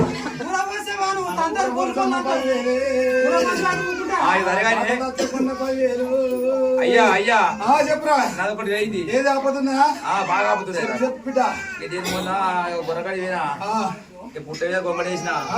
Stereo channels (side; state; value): both; identical; correlation 1.00